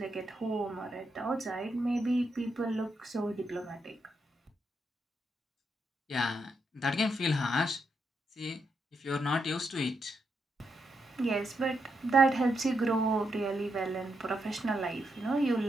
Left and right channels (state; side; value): normal; both; correlation 0.82